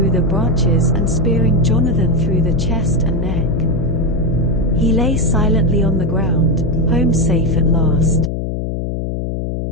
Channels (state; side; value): noise; left; hum, 3 dB below the sound